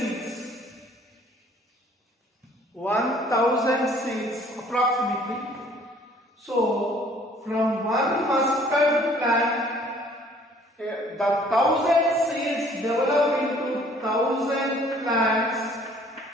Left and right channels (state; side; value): normal; both; correlation 0.57